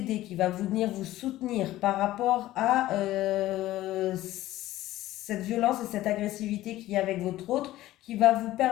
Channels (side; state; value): right; quieter; 15.4 dB